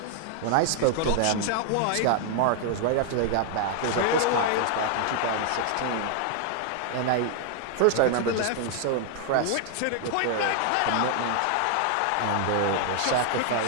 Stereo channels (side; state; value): both; different; correlation 0.00